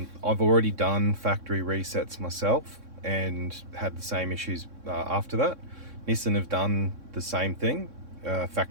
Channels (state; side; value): late; left; 3.6 ms